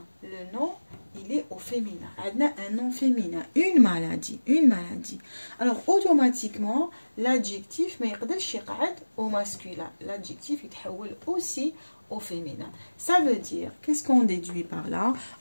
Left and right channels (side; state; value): both; inverted; correlation -1.00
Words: le nom, il est au féminin. On a un nom féminin, une maladie. Alors, automatiquement, l'adjectif, mais au masculin. L'adjectif, il تحول aussi au féminin. Ça veut dire, qu'est-ce qu'on déduit par là?